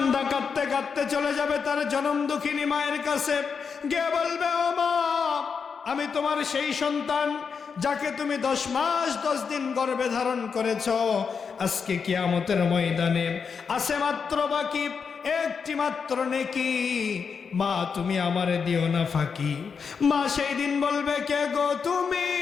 কাঁদতে কাঁদতে চলে যাবে তার জনম দুঃখিনী মায়ের কাছে, গিয়ে বলবে ও মা আমি তোমার সেই সন্তান যাকে তুমি 10 মাস 10 দিন গর্ভে ধারণ করেছ, আজকে কিয়ামতের ময়দানে আছে মাত্র বাকি একটি মাত্র নেকি, মা তুমি আমারে দিও না ফাঁকি। মা সেই দিন বলবে কে গো তুমি?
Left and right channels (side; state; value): right; quieter; 5.9 dB